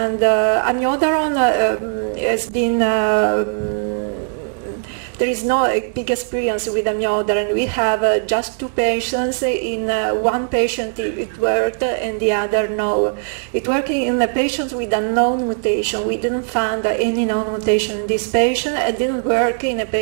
amiodarone has been there is no big experience with amiodarone. We have just 2 patients. In one patient it worked and the other no. It worked in the patients with a known mutation. We didn't find any known mutation in this patient. It didn't work in a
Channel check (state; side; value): silent; left; 66 dB below the other